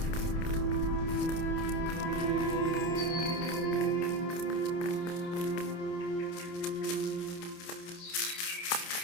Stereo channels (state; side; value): late; right; 28 ms